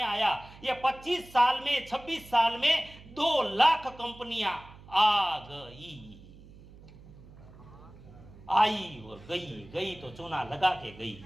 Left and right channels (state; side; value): noise; right; hum, 20 dB below the sound